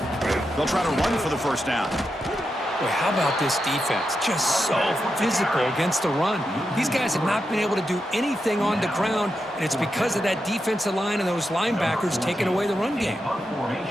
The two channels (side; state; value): both; normal; correlation 0.87